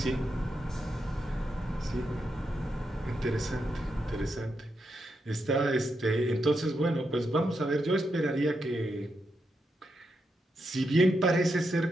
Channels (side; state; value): both; normal; correlation 0.84